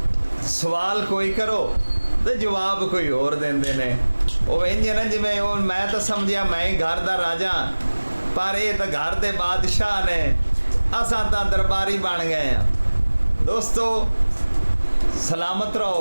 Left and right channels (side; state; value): both; inverted; correlation -1.00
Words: सवाल कोई करो तो जवाब कोई और देंदे ने। वो इंज ना जिवें वो मैं तो समझिया मैं ही घर दा राजा, पर ये तो घर दे बादशाह ने, असां तां दरबारी बन गए हैं। दोस्तों सलामत